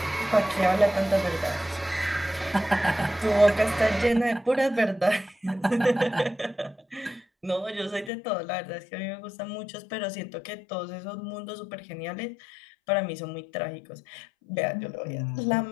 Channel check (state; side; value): drops out; right; at 8.1 s